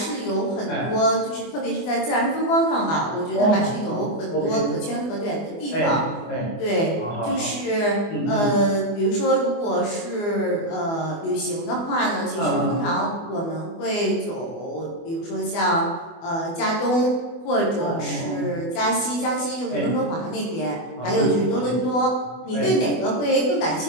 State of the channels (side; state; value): right; late; 24 ms